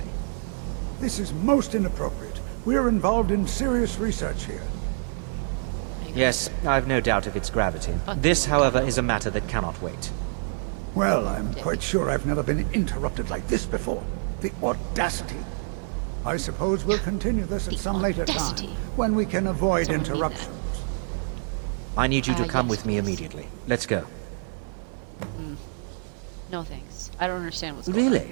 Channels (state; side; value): silent; left; 61 dB below the other